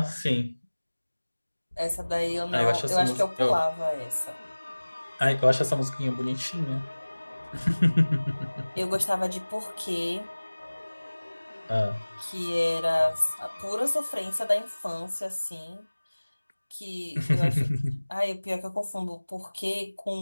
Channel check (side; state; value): both; inverted; correlation -1.00